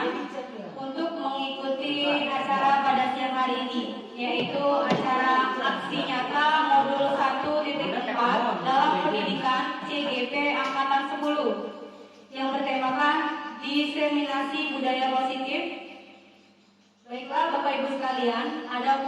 untuk mengikuti acara pada siang hari ini, yaitu acara aksi nyata modul 1.4 dalam pendidikan CGP Angkatan 10 yang bertemakan diseminasi budaya positif. Baiklah Bapak Ibu sekalian,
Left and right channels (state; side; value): identical; both; correlation 1.00